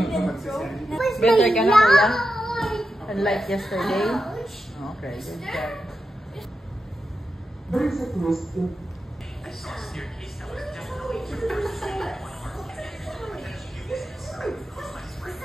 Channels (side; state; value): both; normal; correlation 0.89